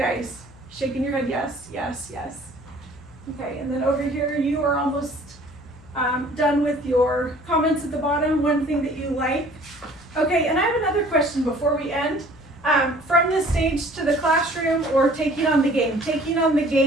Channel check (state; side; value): noise; left; hum, 23 dB below the sound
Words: Shaking your head, yes, yes, yes. Okay, and then over here, you are almost done with your comments at the bottom, one thing that you like. Okay, and I have another question before we end. From the stage to the classroom or taking on the game? Taking on the